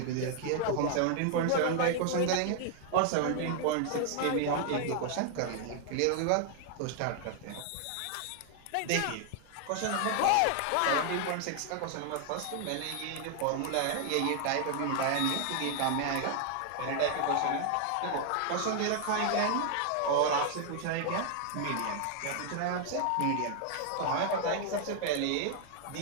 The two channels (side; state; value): both; different; correlation 0.00